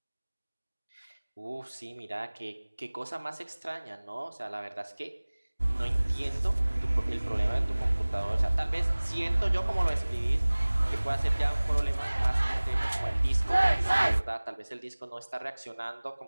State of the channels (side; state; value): both; inverted; correlation -1.00